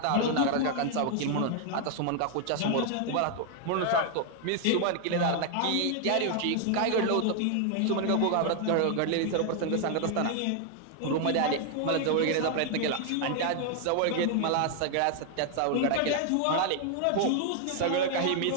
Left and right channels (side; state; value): both; different; correlation 0.00